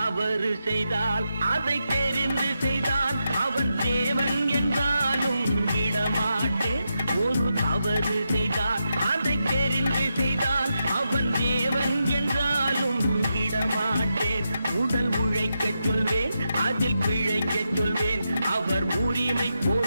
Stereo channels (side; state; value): both; inverted; correlation -0.86